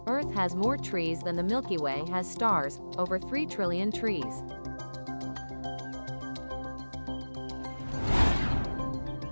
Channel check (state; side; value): inverted; both; correlation -1.00